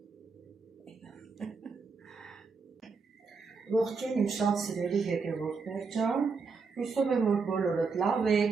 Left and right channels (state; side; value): quieter; left; 4.8 dB